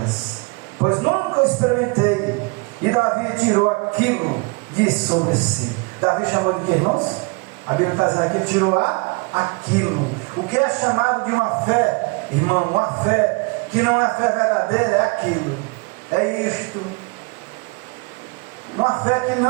Pois nunca experimentei. E Davi tirou aquilo de sobre si. Davi chamou de quê, irmãos? A Bíblia está dizendo aqui, tirou aquilo. O que é chamado de uma fé, irmão, uma fé que não é fé verdadeira, é aquilo. É isto. Uma fé que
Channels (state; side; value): quieter; left; 29.4 dB